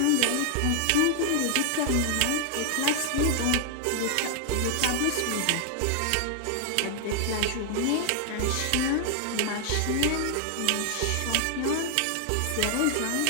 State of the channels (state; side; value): different; both; correlation 0.00